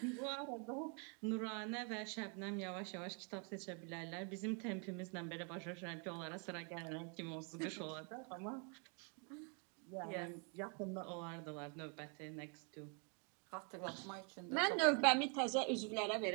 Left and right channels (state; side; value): quieter; left; 37.6 dB